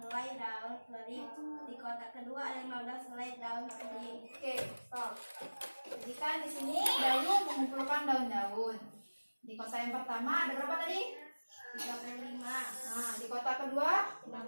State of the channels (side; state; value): both; inverted; correlation -1.00